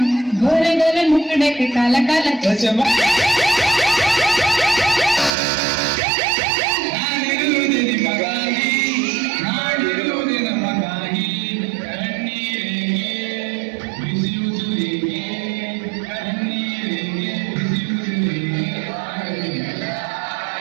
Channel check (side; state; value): left; drops out; at 5.3 s